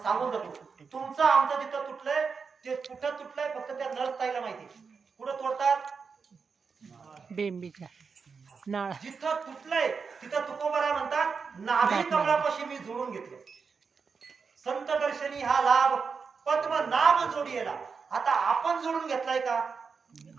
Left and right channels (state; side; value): quieter; left; 5.4 dB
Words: सांगून जातो तुमचं आमचं जिथं तुटलंय ते कुठं तुटलंय फक्त त्या नर्सताईला माहिती कुठं तोडतात बेंबीच्या नाळ जिथं तुटलंय तिथं तुकोबाराय म्हणतात नाभी कमळापाशी मी जोडून घेतलं संत दर्शनी हा लाभ पद्मनाभ जोडीला आता आपण जोडून घेतलाय का